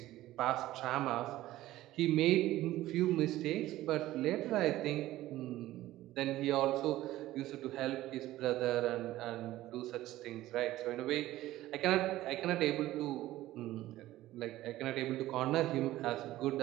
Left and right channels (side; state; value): left; quieter; 15.6 dB